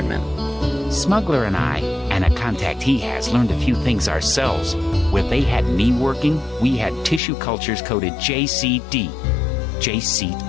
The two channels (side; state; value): right; drops out; at 7.2 s